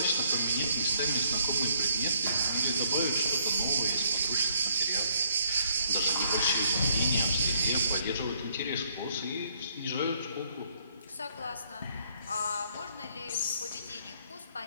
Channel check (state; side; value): inverted; both; correlation -0.67